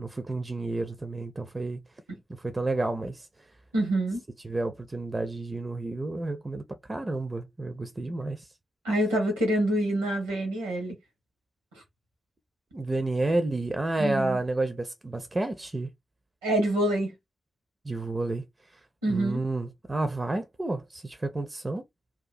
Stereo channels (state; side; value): normal; both; correlation 0.85